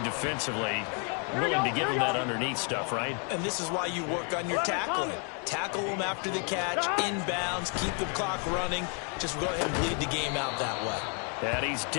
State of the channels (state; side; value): quieter; right; 39.1 dB